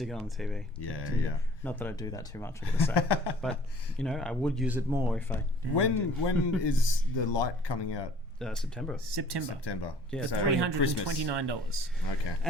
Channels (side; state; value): both; normal; correlation 0.52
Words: it on the TV. yeah. Not that I do that too much, I gotta say. But, I would use it more if I... When is the light coming out? September. September. Yeah, So $329. Okay.